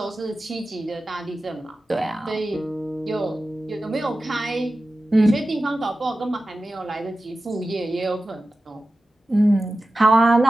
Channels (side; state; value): both; normal; correlation 0.94